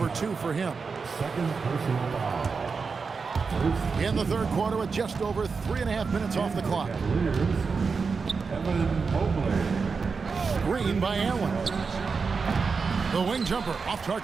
2 for him. Second personal foul. In the third quarter with just over 3.5 minutes off the clock. Evan Mobley. Screen by Allen. The wing jumper off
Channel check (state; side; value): quieter; left; 5.0 dB